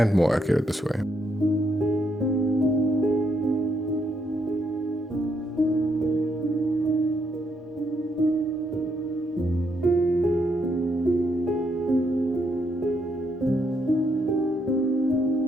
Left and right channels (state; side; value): normal; both; correlation 0.76